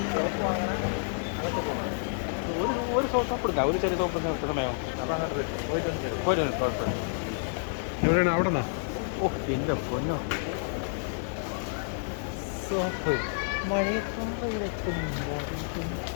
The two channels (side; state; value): right; silent; 58 dB below the other